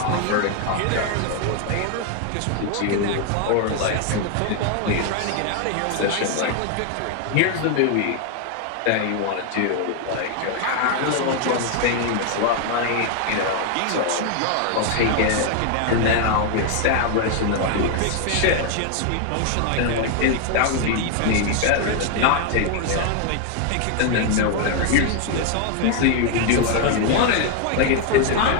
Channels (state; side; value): different; both; correlation 0.01